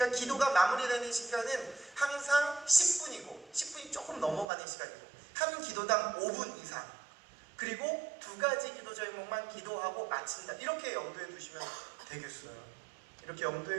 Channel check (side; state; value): left; drops out; at 4.5 s